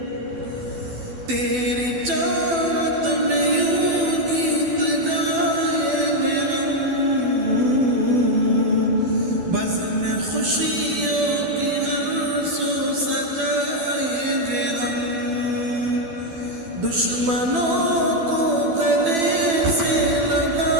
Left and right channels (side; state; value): left; late; 12 ms